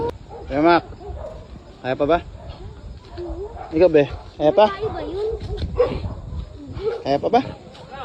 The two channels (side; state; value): both; identical; correlation 1.00